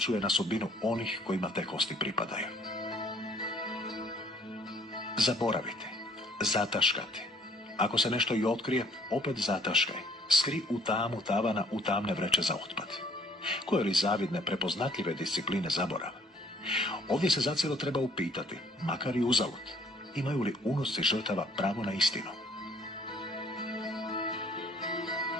na sudbinu onih kojima te kosti pripadaju. Zaboraviti, zataškati. Ako se nešto i otkrije, opet zataškaj. Skri u tamu tavana u tamne vreće za otpad. Koje li zavidne, prepoznatljive discipline zaborava? Ovdje se zacijelo treba upitati, makar i uzalud, imaju li unuci žrtava pravo na istinu?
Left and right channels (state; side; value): normal; both; correlation 0.60